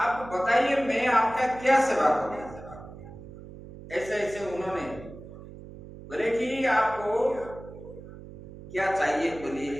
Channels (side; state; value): right; noise; hum, 15 dB below the sound